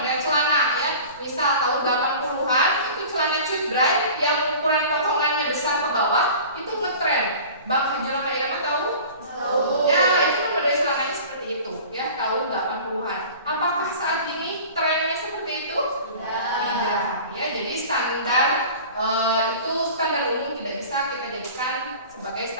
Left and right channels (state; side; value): inverted; both; correlation -0.40